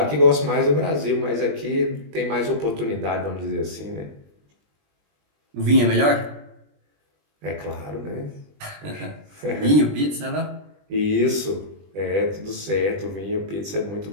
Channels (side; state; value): left; late; 20 ms